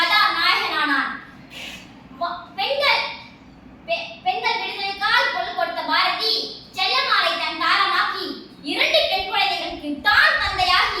நாயகனானான். பெண்கள் விடுதலைக்கால் கொள் கொடுத்த பாரதி செல்லமாலை தன் தாரமாக்கி 2 பெண் குழந்தைகளுக்கு தான்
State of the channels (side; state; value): both; identical; correlation 1.00